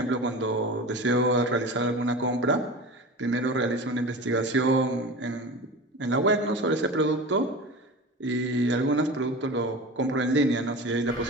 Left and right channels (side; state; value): both; normal; correlation 0.32